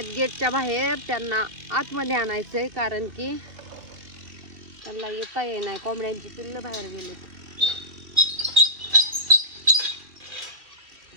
गेटच्या बाहेर, त्यांना आतमध्ये आणायचंय कारण की त्यांना येता येईना. कोंबड्यांची पिल्लं बाहेर गेलीत.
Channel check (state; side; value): late; left; 2.7 ms